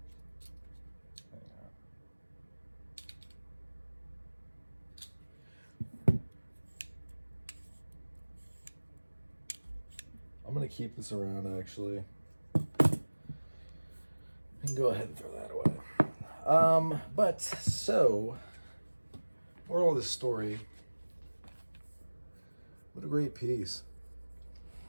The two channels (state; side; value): inverted; both; correlation -1.00